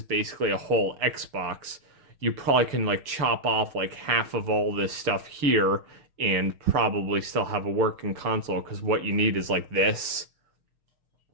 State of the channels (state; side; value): late; left; 6.9 ms